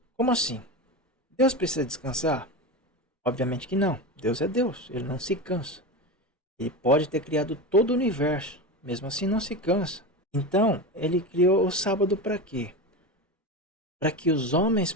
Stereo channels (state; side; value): normal; both; correlation 0.23